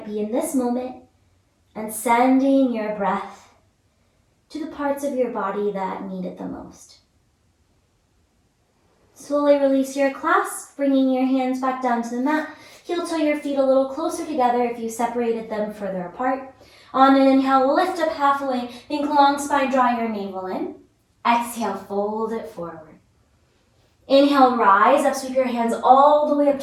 be in this moment, and sending your breath to the parts of your body that need it the most. Slowly release your clasp, bringing your hands back down to the mat. Heel toe your feet a little closer together if you separated them further apart. On an inhale, lift up halfway. Think long spine, draw your navel in. Exhale, fold it forward. Inhale, rise up, sweep your hands all the way up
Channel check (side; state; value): both; identical; correlation 1.00